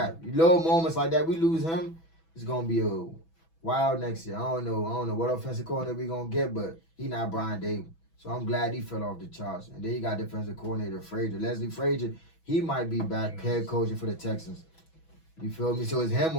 Little moments like that, we lose him, it's going to be a wild next year. I don't know what offensive coordinator we going to get, but he not Brian Dable. So I'm glad he fell off the charts. And then you got defensive coordinator Frazier. Leslie Frazier, he might be back head coaching for the Texans. You feel me? So it's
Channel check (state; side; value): late; right; 6.1 ms